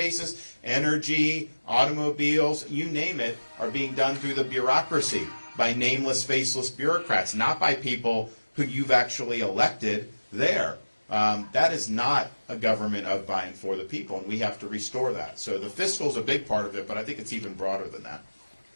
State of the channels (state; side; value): inverted; both; correlation -1.00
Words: energy, automobiles, you name it, are being done through the bureaucracy by nameless, faceless bureaucrats, not by people who you've actually elected there. That is not a government of, by, and for the people, and we have to restore that. So the fiscal is a big part of it, but I think it's even broader than that.